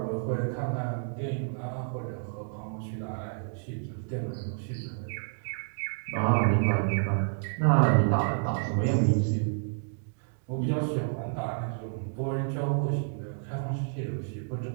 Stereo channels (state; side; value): silent; left; digital silence